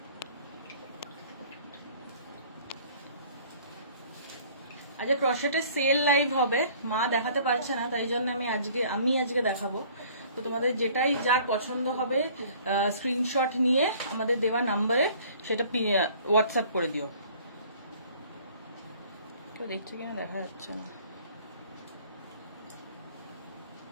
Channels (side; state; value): both; inverted; correlation -0.53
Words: আজকে ক্রশেটের সেল লাইভ হবে, মা দেখাতে পারছে না, তাই জন্য আমি আজকে দেখাবো। তো তোমাদের যেটাই যার পছন্দ হবে স্ক্রিনশট নিয়ে আমাদের দেওয়া নাম্বারে সেটা হোয়াটসঅ্যাপ করে দিও। কেউ দেখছে কিনা দেখা যাচ্ছে না।